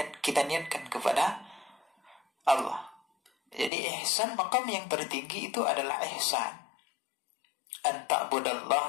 kita niatkan kepada Allah. Jadi ihsan, makam yang tertinggi itu adalah ihsan. An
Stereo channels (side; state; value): right; drops out; at 3.7 s